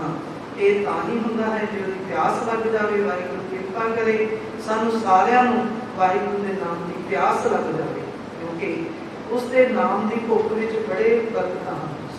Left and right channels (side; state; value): both; identical; correlation 1.00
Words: ਇਹ ਤਾਂ ਹੀ ਹੁੰਦਾ ਹੈ ਜੇ ਉਹਦੀ ਪਿਆਸ ਲੱਗ ਜਾਵੇ। ਵਾਹਿਗੁਰੂ ਕਿਰਪਾ ਕਰੇ ਸਾਨੂੰ ਸਾਰਿਆਂ ਨੂੰ ਵਾਹਿਗੁਰੂ ਦੇ ਨਾਮ ਦੀ ਪਿਆਸ ਲੱਗ ਜਾਵੇ, ਕਿਉਂਕਿ ਉਸ ਦੇ ਨਾਮ ਦੀ ਭੁੱਖ ਵਿੱਚ ਬੜੇ ਬਰਕਤਾਂ ਹਨ।